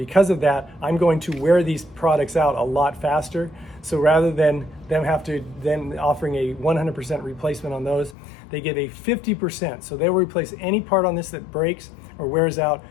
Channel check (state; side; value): drops out; right; at 8.2 s